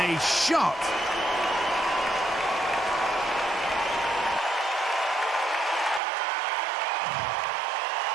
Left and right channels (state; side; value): drops out; left; at 6.0 s